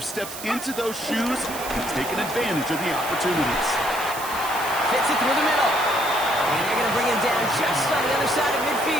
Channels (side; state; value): right; noise; hiss, 10 dB below the sound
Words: stepped into those shoes and taken advantage of the opportunities. Fits it through the middle. And they're going to bring him down just on the other side of